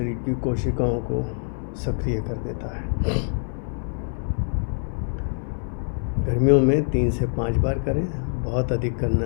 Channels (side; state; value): right; silent; 62 dB below the other